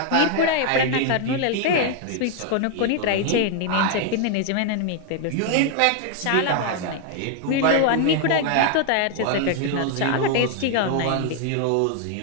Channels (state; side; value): different; both; correlation 0.00